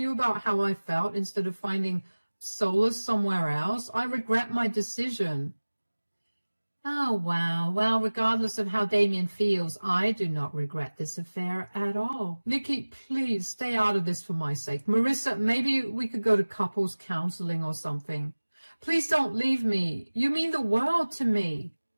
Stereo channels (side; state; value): both; inverted; correlation -1.00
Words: about how I felt instead of finding solace somewhere else. I regret my decision. Oh, wow. Well, regardless of how Damien feels, I do not regret this affair at all. Nikki, please stay out of this for my sake. Marissa, maybe we could go to couples counseling or something. Please don't leave me. You mean the world to me.